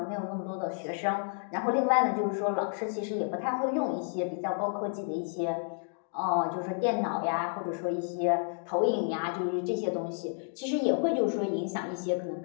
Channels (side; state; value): right; silent; 57 dB below the other